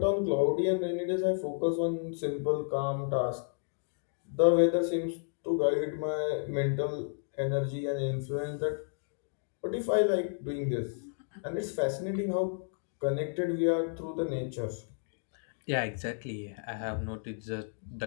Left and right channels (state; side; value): silent; right; digital silence